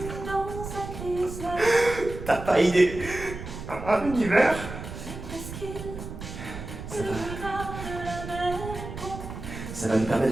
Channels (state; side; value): noise; right; rumble, 9 dB below the sound